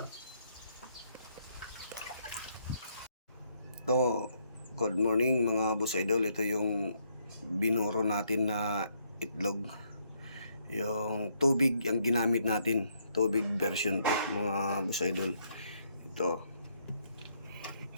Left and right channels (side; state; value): both; inverted; correlation -0.73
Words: So, good morning mga boss idol. Ito yung binuro natin na itlog. Yung tubig ang ginamit natin. Tubig version to mga boss idol. Ito.